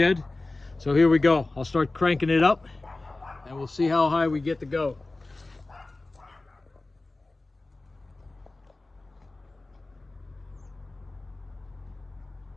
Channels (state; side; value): quieter; right; 3.1 dB